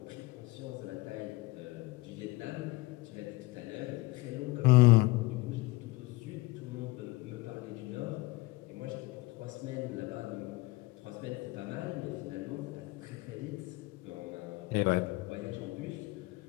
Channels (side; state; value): right; quieter; 21.3 dB